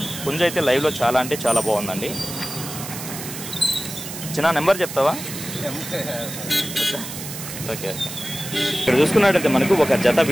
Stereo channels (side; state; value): right; noise; hiss, 9 dB below the sound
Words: పుంజ అయితే లైవ్లో చాలా అంటే చాలా బాగుందండి. చిన్న నెంబర్ చెప్తావా? ఓకే. ఇక్కడ చూసుకున్నట్టయితే మనకు ఒక జత